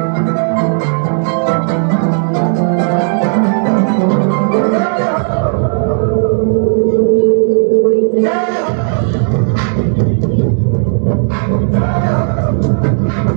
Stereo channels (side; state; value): left; silent; digital silence